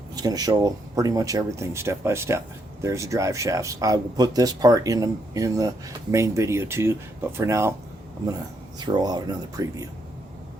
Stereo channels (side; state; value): both; normal; correlation 0.76